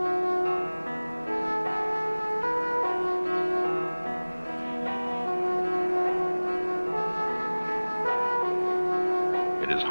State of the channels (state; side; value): inverted; both; correlation -1.00